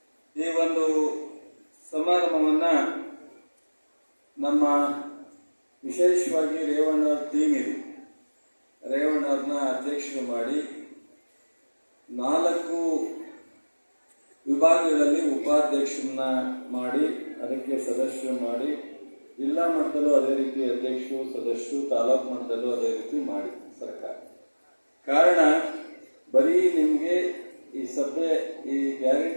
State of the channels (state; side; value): inverted; both; correlation -1.00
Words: ಈ ಒಂದು ಸಮಾರಂಭವನ್ನ ನಮ್ಮ ವಿಶೇಷವಾಗಿ ರೇವಣ್ಣವ್ರ ಟೀಮ್ ಇದೆ. ರೇವಣ್ಣವ್ರನ್ನ ಅಧ್ಯಕ್ಷರು ಮಾಡಿ 4 ವಿಭಾಗಗಳಲ್ಲಿ ಉಪಾಧ್ಯಕ್ಷರನ್ನ ಮಾಡಿ ಅದಕ್ಕೆ ಸದಸ್ಯರು ಮಾಡಿ, ಜಿಲ್ಲಾ ಮಟ್ಟದಲ್ಲೂ ಅದೇ ರೀತಿ ಅಧ್ಯಕ್ಷರು ಸದಸ್ಯರು, ತಾಲೂಕು ಮಟ್ಟದಲ್ಲೂ ಅದೇ ರೀತಿ ಮಾಡಿ ಸರ್ಕಾರ. ಕಾರಣ ಬರೀ ನಿಮಗೆ ಈ ಸಭೆ ಈ